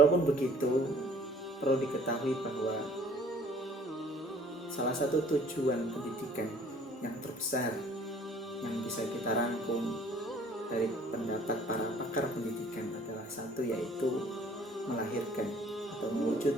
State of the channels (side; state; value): both; normal; correlation 0.55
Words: begitu, perlu diketahui bahwa salah satu tujuan pendidikan yang terbesar yang bisa kita rangkum dari pendapat para pakar pendidikan adalah satu, yaitu melahirkan atau